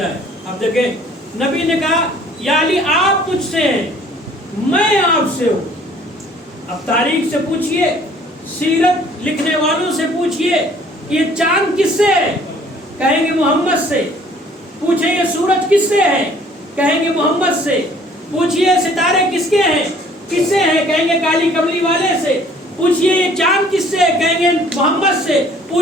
اب دیکھیں نبی نے کہا یا علی آپ مجھ سے ہیں، میں آپ سے ہوں. اب تاریخ سے پوچھئے، سیرت لکھنے والوں سے پوچھئے کہ یہ چاند کس سے ہے، کہیں گے محمد سے. پوچھیں یہ سورج کس سے ہے، کہیں گے محمد سے. پوچھئے ستارے کس کے ہیں، کس سے ہیں، کہیں گے کالی کملی والے سے. پوچھئے یہ چاند کس سے ہے، کہیں گے محمد سے.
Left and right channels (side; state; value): both; normal; correlation 0.56